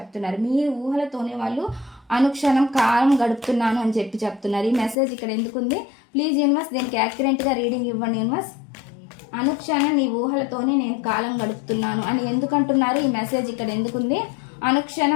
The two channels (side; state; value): right; drops out; at 5.0 s